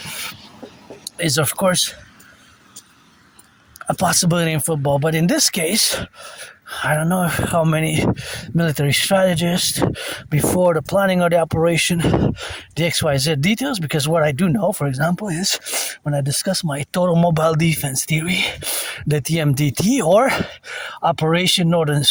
is of course a possibility in football, but in this case, I don't know how many military strategists before the planning of the operation, the XYZ details, because what I do know, for example, is when I discuss my total mobile defense theory, the TMDT, or Operation Northern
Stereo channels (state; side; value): identical; both; correlation 1.00